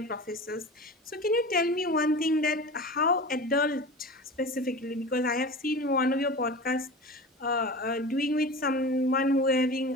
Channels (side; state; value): both; normal; correlation 0.33